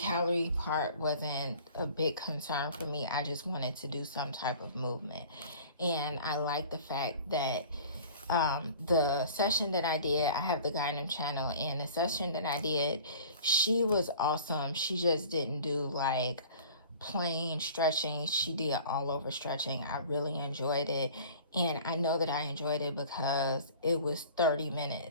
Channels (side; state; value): both; inverted; correlation -0.45